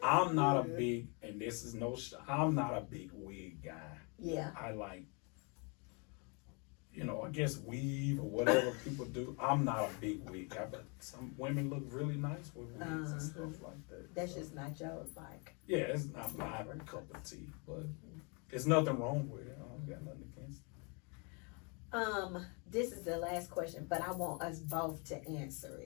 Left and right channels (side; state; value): right; quieter; 33.9 dB